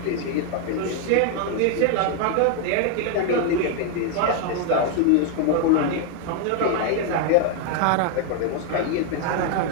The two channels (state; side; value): different; both; correlation 0.00